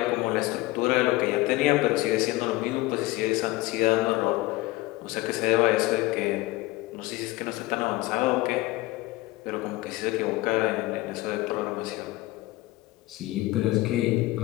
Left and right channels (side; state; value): right; quieter; 19.6 dB